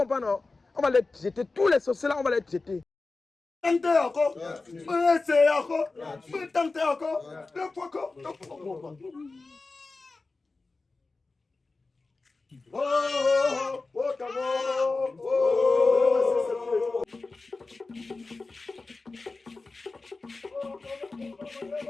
non? On va les jeter. Tous les sorciers là, on va les jeter. Tentez encore. Essayez encore. Tentez encore. Le fois encore. Oh,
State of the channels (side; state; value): right; quieter; 3.7 dB